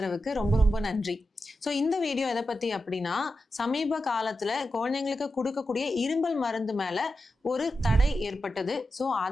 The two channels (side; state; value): both; normal; correlation 0.90